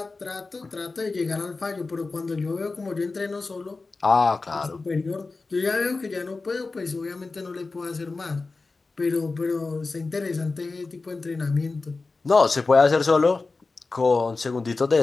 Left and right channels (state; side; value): quieter; right; 3.8 dB